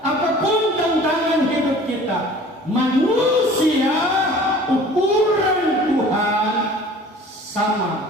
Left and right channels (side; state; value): both; normal; correlation 0.46